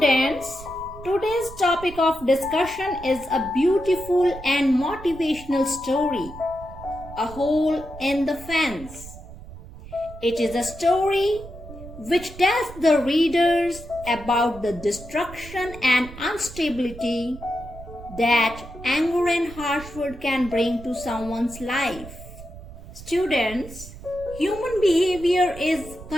today's topic of discussion is a beautiful and motivational story, A Hole in the Fence. It is a story which tells the readers about the destruction and instability that anger and harsh word can bring to someone's life. Students, human behavior is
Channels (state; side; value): noise; right; rumble, 15 dB below the sound